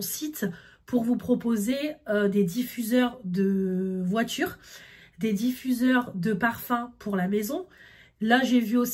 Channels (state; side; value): identical; both; correlation 1.00